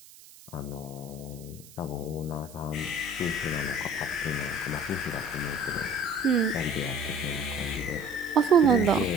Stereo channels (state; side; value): noise; right; hiss, 21 dB below the sound